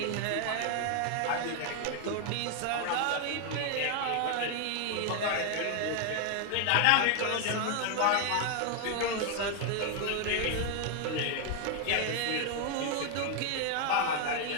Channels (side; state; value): both; different; correlation 0.01